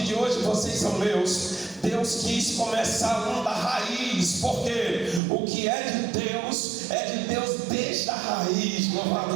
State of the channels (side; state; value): left; drops out; at 5.2 s